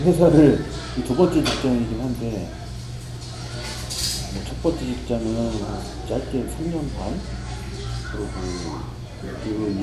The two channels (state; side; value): identical; both; correlation 1.00